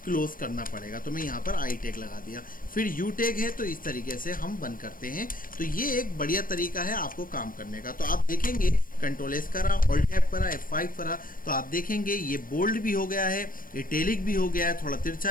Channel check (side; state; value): right; late; 0.41 ms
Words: क्लोज करना पड़ेगा। तो मैं यहाँ पर आई टैग लगा दिया, फिर यू टैग है, तो इस तरीके से हम बंद करते हैं। तो ये एक बढ़िया तरीका है आपको काम करने का। तो आप देखेंगे कंट्रोल एस करा, ऑल टैप करा, F5 करा, तो आप देखेंगे ये बोल्ड भी हो गया है, इटैलिक भी हो गया है, थोड़ा